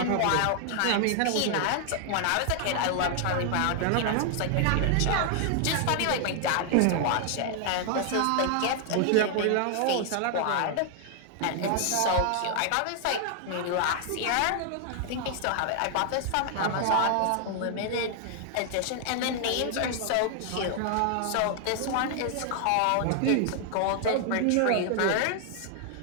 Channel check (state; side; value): different; both; correlation 0.00